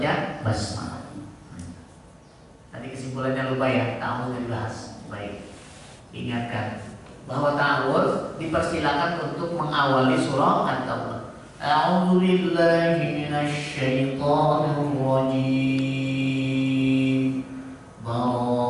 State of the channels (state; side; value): identical; both; correlation 1.00